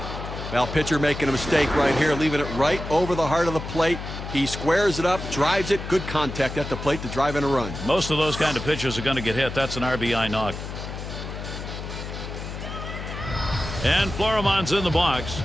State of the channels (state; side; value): noise; left; hum, 8 dB below the sound